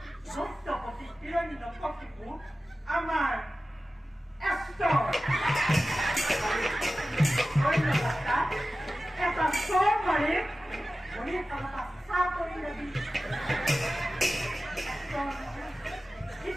দৈত্যপতি হিৰণ্যকশিপু আমাৰ ঈশ্বৰ। এটা চৰ মাৰি ভৰি তলত চাহ কৰি লবি।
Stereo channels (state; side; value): normal; both; correlation 0.95